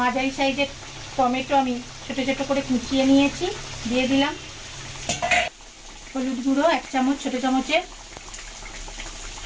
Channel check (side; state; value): both; identical; correlation 1.00